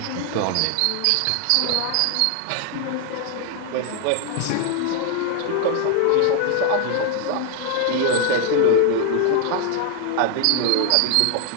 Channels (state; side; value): different; both; correlation 0.00